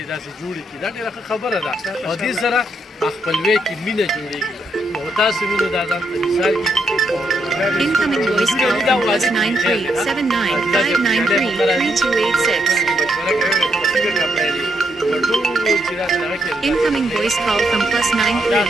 داسې جوړې کړي دا ډېره ښه خبره ده او دې سره خپلوۍ کې مینه جوړېږي او تاسو وینئ دا ځان ته مثال Incoming voice call from +93793593286. Incoming voice call from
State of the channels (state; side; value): normal; both; correlation 0.78